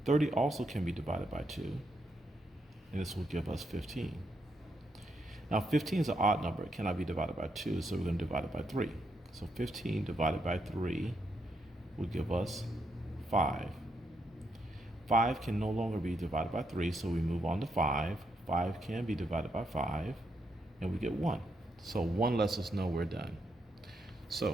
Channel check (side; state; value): both; normal; correlation 0.79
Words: 30 also can be divided by 2, and this will give us 15. Now 15 is an odd number. It cannot be divided by 2, so we're going to divide it by 3. So 15 divided by 3 will give us 5. 5 can no longer be divided by 3, so we move on to 5. 5 can be divided by 5, and we get 1. So 1 lets us know we're done.